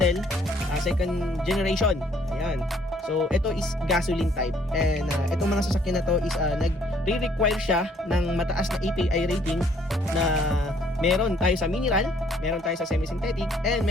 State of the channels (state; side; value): normal; both; correlation 0.63